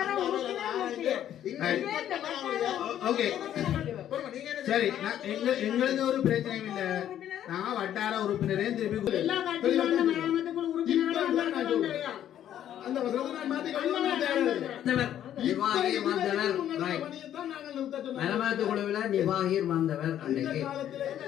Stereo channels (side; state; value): right; quieter; 11.0 dB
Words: சரி. எங்களுக்கு ஒரு பிரச்சனையும் இல்ல. நான் வட்டார உறுப்பினரையும் திருப்பி மராமத்து குழுவில் நிர்வாகியர் வந்தவர் அன்றைக்கு